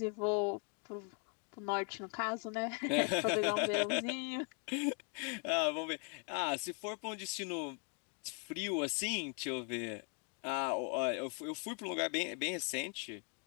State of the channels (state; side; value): quieter; right; 36.7 dB